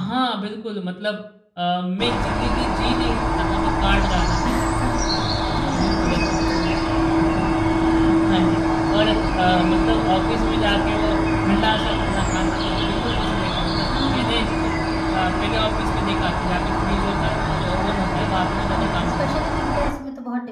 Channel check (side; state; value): both; identical; correlation 1.00